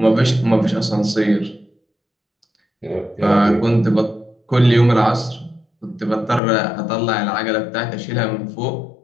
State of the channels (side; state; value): right; drops out; at 6.4 s